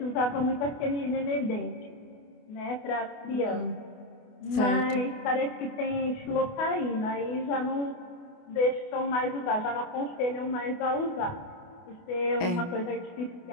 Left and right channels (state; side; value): late; right; 28 ms